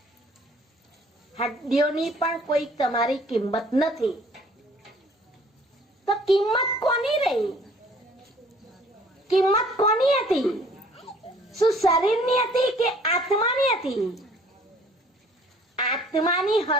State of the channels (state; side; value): normal; both; correlation 0.56